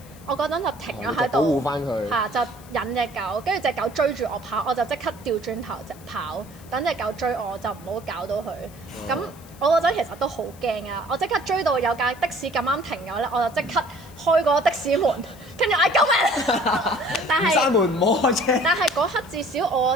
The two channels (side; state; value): left; noise; hiss, 23 dB below the sound